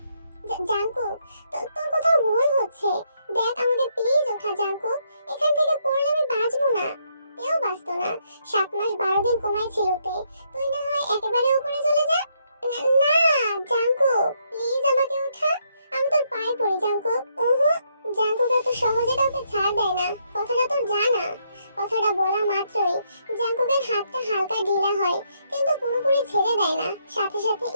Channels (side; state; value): both; inverted; correlation -0.75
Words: জাঙ্কুক, তোর কোথাও ভুল হচ্ছে। দেখ, আমাকে প্লিজ ওঠা জাঙ্কুক, এখান থেকে পড়লে আমি বাঁচবো না। তেও বাঁচতো না। 7 মাস 12 দিন কমাই ছিল তে। তুই না হয় একেবারে উপরে চলে যা। না জাঙ্কুক, প্লিজ আমাকে ওঠা, আমি তোর পায়ে পড়ি জাঙ্কুক। জাঙ্কুক এত সহজে কাউকে ছাড় দেয় না, কথাটা তোর জানা। কথাটা বলা মাত্রই জাঙ্কুকের হাতটা হালকা ঢিলা হয়, কিন্তু পুরোপুরি ছেড়ে দেয় না। সাথে সাথে